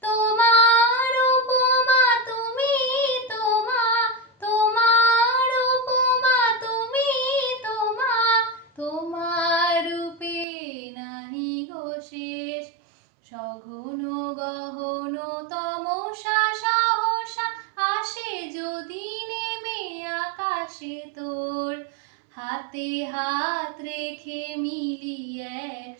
তোমার উপমা তুমি, তোমার উপমা তুমি, তোমার রূপে নাহি গো শেষ। সঘন গহন তমসা সহসা আসে যদি নেমে আকাশে তোর। হাতে হাত রেখে মিলি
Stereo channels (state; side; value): drops out; left; at 10.5 s